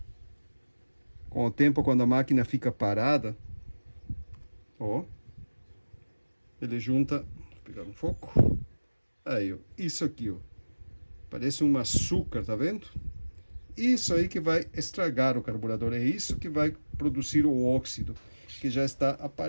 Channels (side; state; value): both; inverted; correlation -1.00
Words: Com o tempo, quando a máquina fica parada, ó, ele junta. Vou pegar um foco. Aí, ó. Isso aqui, ó. Parece um açúcar, tá vendo? Isso aí que vai estragar o carburador. É isso que vai produzir o óxido, que já está